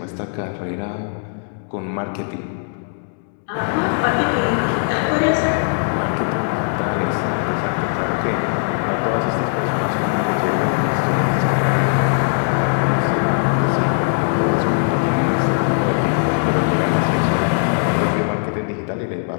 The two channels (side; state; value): right; silent; digital silence